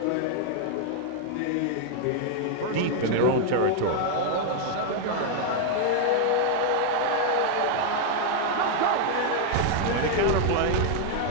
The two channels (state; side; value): different; both; correlation 0.00